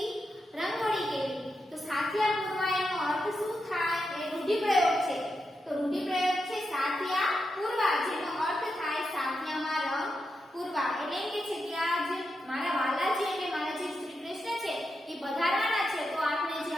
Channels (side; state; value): both; normal; correlation 0.86